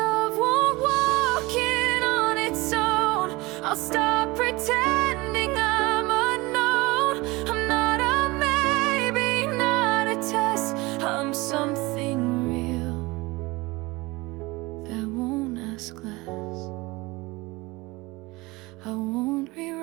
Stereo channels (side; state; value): left; quieter; 22.5 dB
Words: won't walk in on its own, I'll stop pretending I'm unknown. I'm not a maybe, not a test. I'm something real that won't ask less. I won't